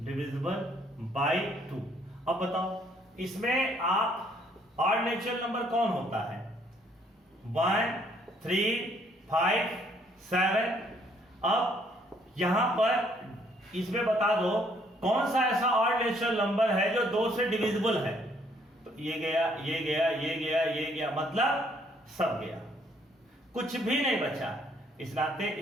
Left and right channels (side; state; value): both; normal; correlation 0.66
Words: by 2। अब बताओ इसमें आप ऑड नेचुरल नंबर कौन होता है? 1, 3, 5, 7। अब यहां पर इसमें बता दो कौन सा ऐसा ऑड नेचुरल नंबर है जो 2 से डिविजिबल है। तो ये गया, ये गया, ये गया, ये गया, मतलब सब गया, कुछ भी नहीं बचा। इस नाते